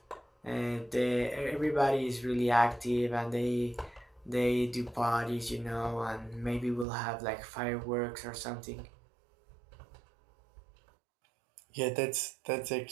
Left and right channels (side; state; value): left; drops out; at 6.9 s